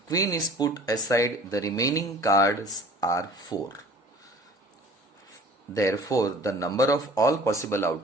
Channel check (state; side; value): normal; both; correlation 0.47